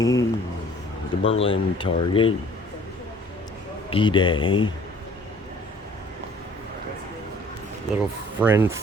the Berlin target, D-Day, Little Friends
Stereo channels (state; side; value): normal; both; correlation 0.53